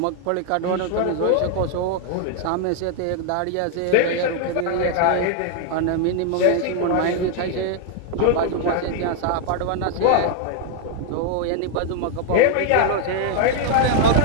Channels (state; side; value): different; both; correlation 0.00